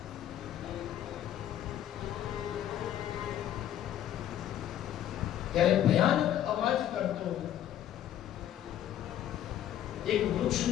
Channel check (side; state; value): right; quieter; 11.3 dB